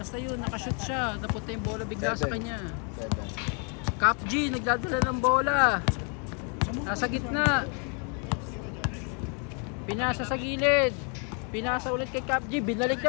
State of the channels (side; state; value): right; quieter; 38.0 dB